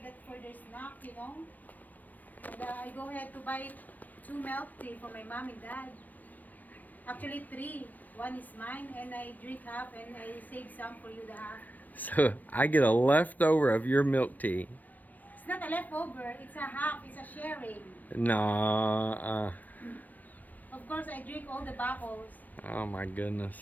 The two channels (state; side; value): late; right; 0.084 ms